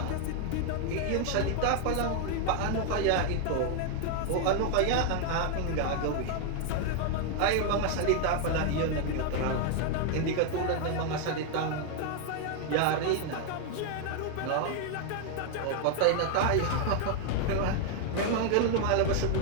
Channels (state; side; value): different; both; correlation 0.00